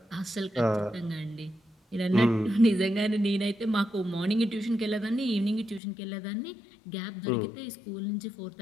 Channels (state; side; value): drops out; right; at 5.8 s